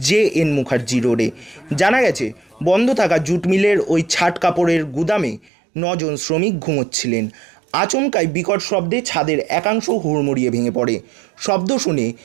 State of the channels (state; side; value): drops out; left; at 5.5 s